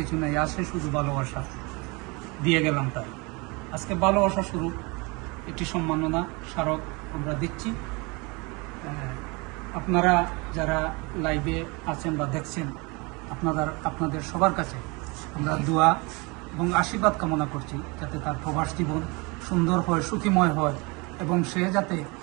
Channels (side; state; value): left; quieter; 27.7 dB